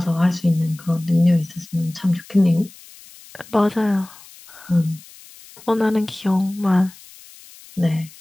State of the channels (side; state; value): left; noise; hiss, 21 dB below the sound